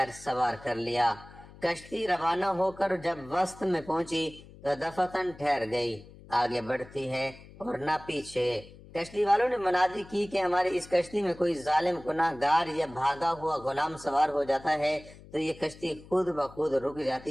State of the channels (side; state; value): left; noise; hum, 20 dB below the sound